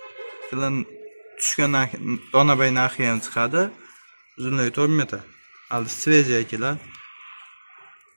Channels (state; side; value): inverted; both; correlation -1.00